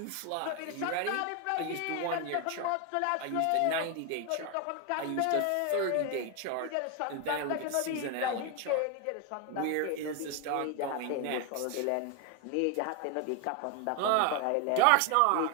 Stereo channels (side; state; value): both; different; correlation 0.01